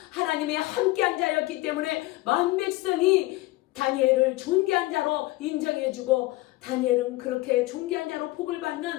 하나님의 함께한 자였기 때문에 만백성이 다니엘을 존귀한 자로 인정해주고 다니엘은 그렇게 존귀한 자로 복을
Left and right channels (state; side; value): quieter; right; 19.3 dB